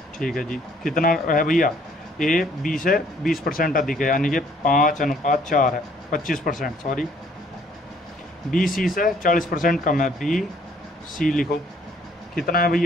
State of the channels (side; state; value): both; normal; correlation 0.62